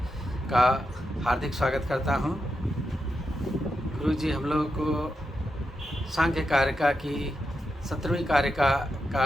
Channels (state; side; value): normal; both; correlation 0.86